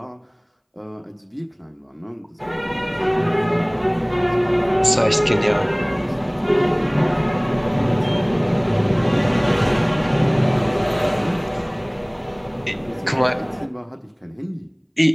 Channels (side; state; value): both; identical; correlation 1.00